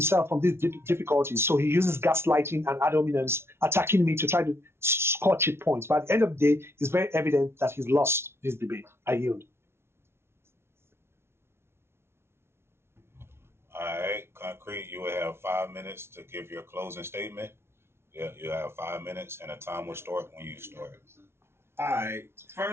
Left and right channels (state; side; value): late; left; 0.12 ms